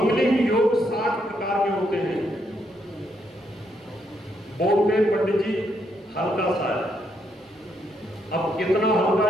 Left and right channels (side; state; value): both; normal; correlation 0.76